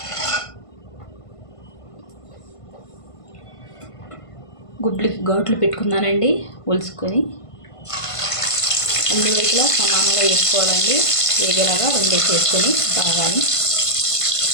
గుడ్లకి ఘాట్లు పెట్టుకున్నానండి. ఒలుసుకొని అన్ని వైపులా సమానంగా వేసుకోవాలండి. వేగేలాగా రెండేసి వేసుకొని బాగా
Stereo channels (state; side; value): late; right; 1.5 ms